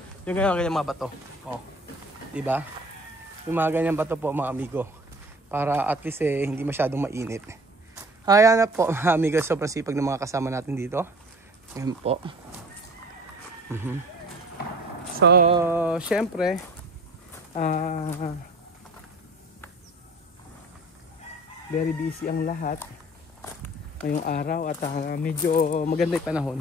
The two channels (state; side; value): normal; both; correlation 0.45